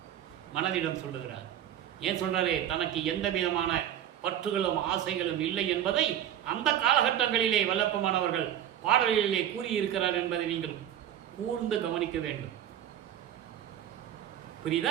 மனதிடம் சொல்லுகிறார். ஏன் சொல்றாரு? தனக்கு எந்த விதமான பற்றுகளும் ஆசைகளும் இல்லை என்பதை அந்த காலகட்டங்களிலே வல்லப்பமானவர்கள் பாடலிலே கூறியிருக்கிறார் என்பதை நீங்கள் கூர்ந்து கவனிக்க வேண்டும்.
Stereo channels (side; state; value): left; quieter; 10.9 dB